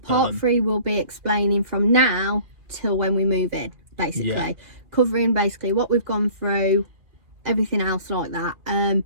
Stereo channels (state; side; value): late; left; 2.6 ms